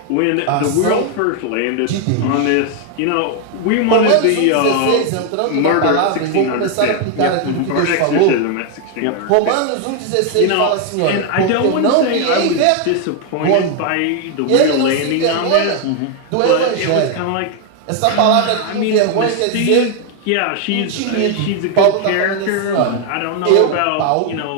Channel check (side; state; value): both; different; correlation 0.01